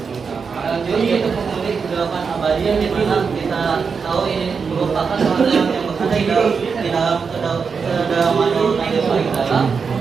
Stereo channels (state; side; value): quieter; left; 5.6 dB